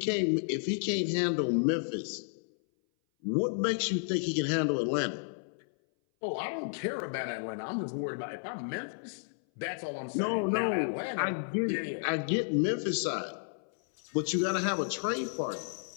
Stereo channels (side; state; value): right; silent; 56 dB below the other